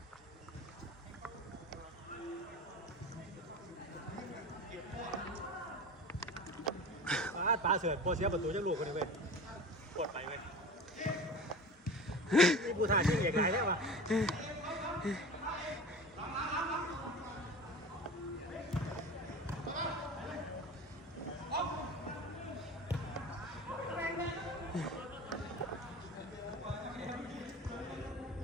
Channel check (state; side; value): normal; both; correlation 0.34